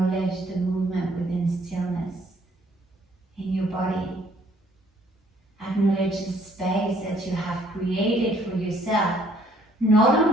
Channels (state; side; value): normal; both; correlation 0.63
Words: the movement within stillness in your body. Acknowledge the space that you have created for yourself, not